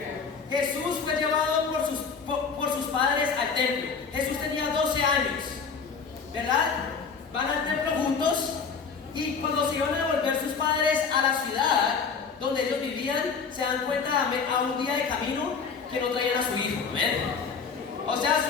Jesús fue llevado por sus padres al templo. Jesús tenía 12 años, ¿verdad? Van al templo juntos y cuando se iban a devolver sus padres a la ciudad donde ellos vivían, se dan cuenta a un día de camino que no traían a su hijo. ¿Ven? O sea,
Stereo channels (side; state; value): right; quieter; 5.6 dB